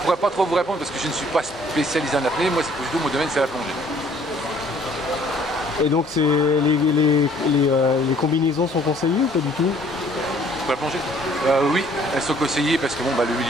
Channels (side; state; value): both; normal; correlation 0.59